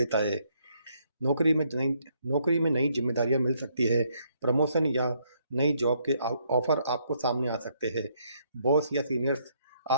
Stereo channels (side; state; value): both; inverted; correlation -0.71